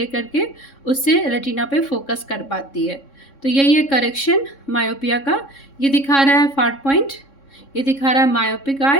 करके उससे रेटिना पे फोकस कर पाती है। तो यही है करेक्शन मायोपिया का। ये दिखा रहा है फार पॉइंट, ये दिखा रहा है मायोपिक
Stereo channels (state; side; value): late; right; 3.6 ms